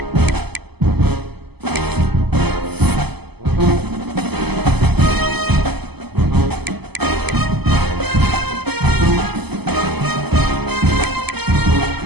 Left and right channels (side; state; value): left; late; 0.97 ms